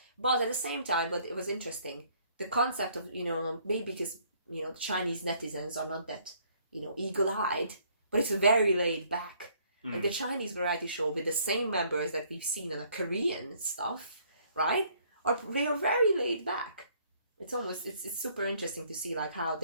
But at the same time, but it was interesting. The concept of, you know, maybe because, you know, the Chinese netizens are not that, you know, eagle-eyed, but it's very laid back. Like the Chinese variety show with the same members that we've seen on the Korean stuff, right? They are very laid back. It's super interesting to see like how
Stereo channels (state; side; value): inverted; both; correlation -0.64